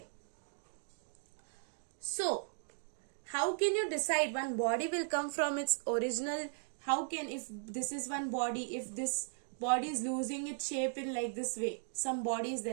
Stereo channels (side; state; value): left; silent; digital silence